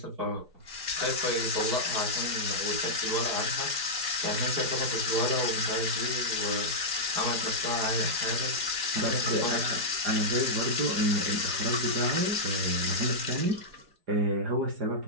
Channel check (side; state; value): left; late; 4.8 ms